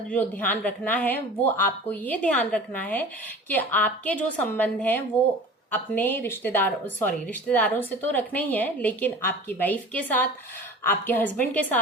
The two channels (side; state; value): both; normal; correlation 0.39